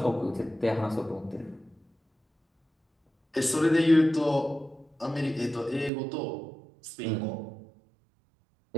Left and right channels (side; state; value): left; drops out; at 5.9 s